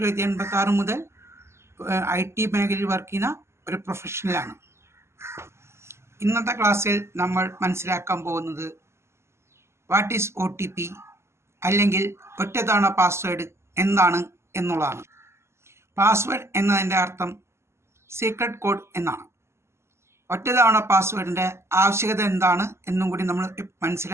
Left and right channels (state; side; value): late; left; 0.13 ms